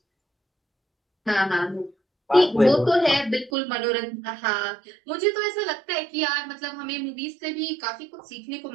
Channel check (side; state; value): left; drops out; at 3.5 s